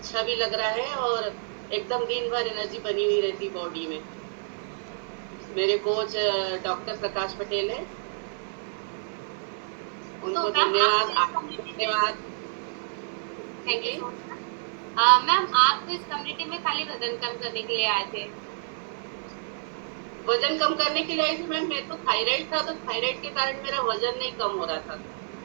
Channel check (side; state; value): left; silent; digital silence